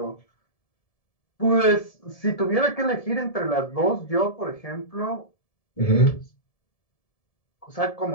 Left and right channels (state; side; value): late; right; 1.7 ms